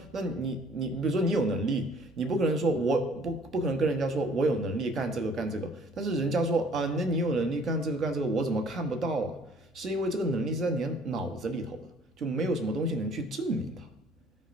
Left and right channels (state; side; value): normal; both; correlation 0.56